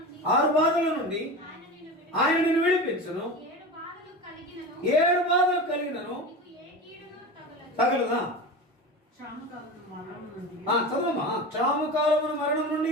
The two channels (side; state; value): both; normal; correlation 0.28